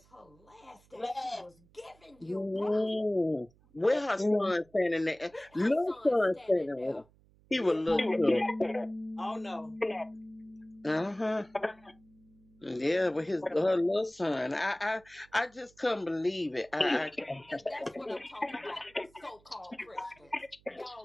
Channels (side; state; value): right; noise; hum, 30 dB below the sound